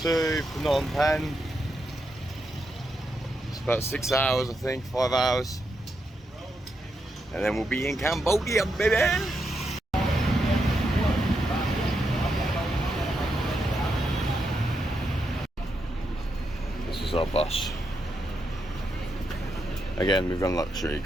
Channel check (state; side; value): normal; both; correlation 0.83